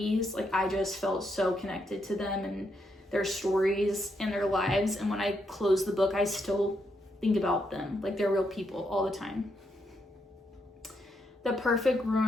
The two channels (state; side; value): normal; both; correlation 0.79